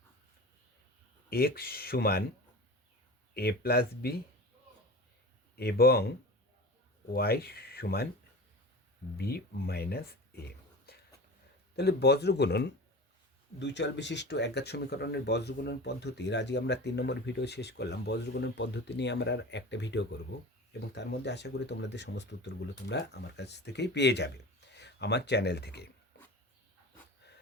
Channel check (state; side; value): normal; both; correlation 0.34